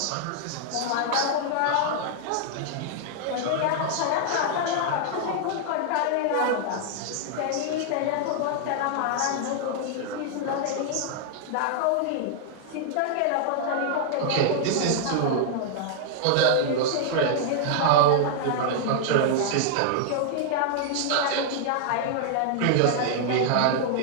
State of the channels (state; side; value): different; both; correlation -0.01